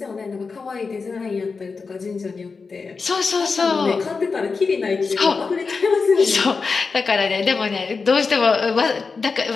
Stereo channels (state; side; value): quieter; right; 4.7 dB